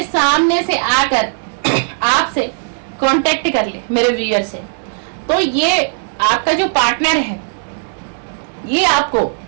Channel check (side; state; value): left; silent; digital silence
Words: सामने से आकर आपसे कांटेक्ट कर ले मेरे व्यूअर से। तो ये आपका जो पार्टनर है, ये आपको